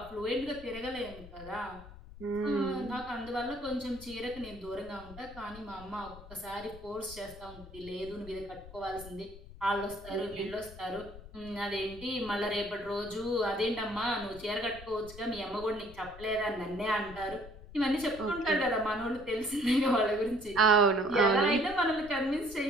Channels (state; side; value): noise; left; rumble, 16 dB below the sound